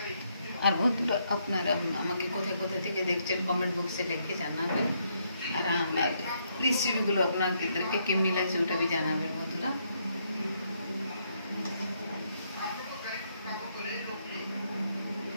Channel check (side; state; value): both; inverted; correlation -0.75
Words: আর বন্ধুরা আপনারা আমাকে কোথায় কোথায় থেকে দেখছেন কমেন্ট বক্সে লিখে জানাবেন, আর আমার রেসিপিগুলো আপনাদেরকে কেমনি লাগছে ওটা भी জানাবেন বন্ধুরা।